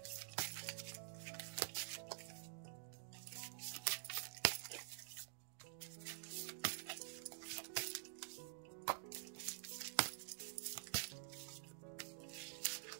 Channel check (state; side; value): silent; left; digital silence